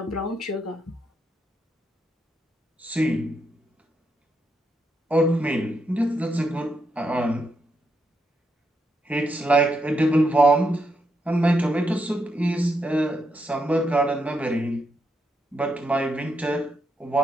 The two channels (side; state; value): both; normal; correlation 0.81